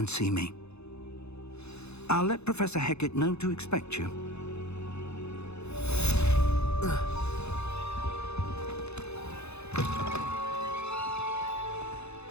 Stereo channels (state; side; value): late; right; 0.80 ms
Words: see me. I'll let Professor Hecat know to expect you.